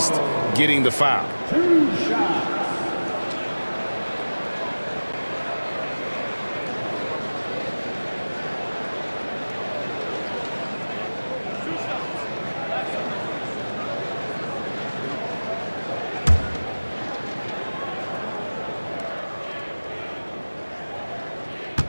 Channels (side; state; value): both; inverted; correlation -1.00